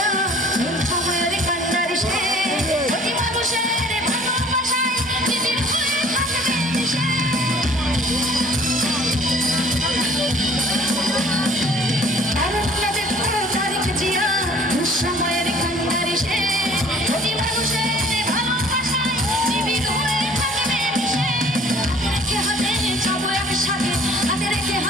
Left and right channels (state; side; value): normal; both; correlation 0.52